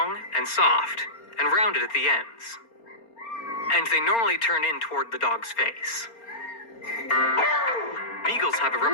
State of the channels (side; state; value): right; late; 4.3 ms